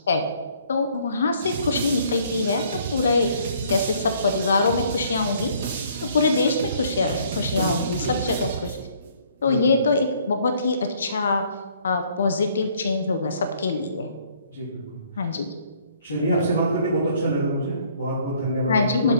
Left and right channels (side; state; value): both; inverted; correlation -0.62